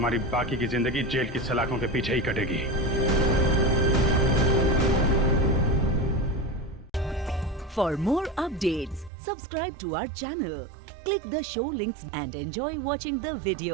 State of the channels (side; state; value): left; drops out; at 9.1 s